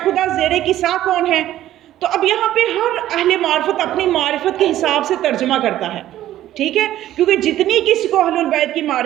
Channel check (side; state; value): left; quieter; 13.3 dB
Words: خدا زیر کسا کون ہے. تو اب یہاں پہ ہر اہل معرفت اپنی معرفت کے حساب سے ترجمہ کرتا ہے، ٹھیک ہے، کیونکہ جتنی کسی کو اہل البیت کی